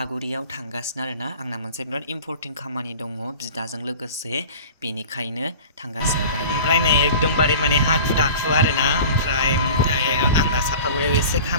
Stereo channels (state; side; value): inverted; both; correlation -0.39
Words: थांगासिनो आरोना आंना मोनसे बिराद इम्पोर्टेन्ट खामानि दङ बिदाजों लोगोसे बेनिखायनो थांगासिनो दायो ओमफ्राय नै एकदमबारे माने हाखु दाखु आरोना ओमफ्राय आंना साफागुरियाव एसे